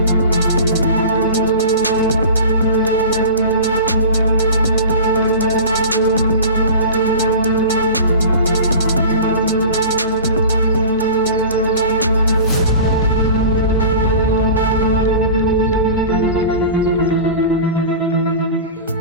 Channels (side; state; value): both; inverted; correlation -0.35